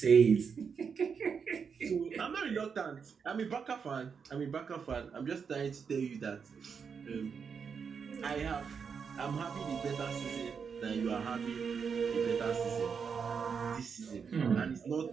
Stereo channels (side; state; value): left; quieter; 6.2 dB